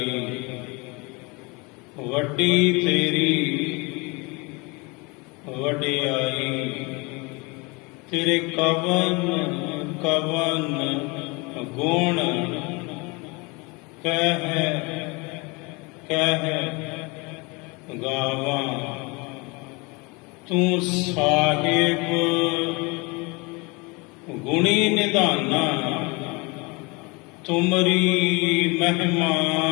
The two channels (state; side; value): quieter; right; 27.4 dB